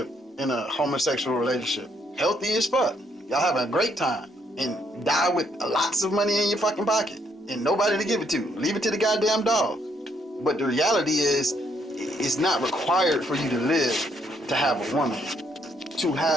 in a homosexual relationship. Healthy as fuck. Y'all having a great time and die with lots of money in your fucking pocket and nobody to give it to. Leave it to the goddamn dog. But the reality is, it's not required for you to live to have a woman. To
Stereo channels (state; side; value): normal; both; correlation 0.72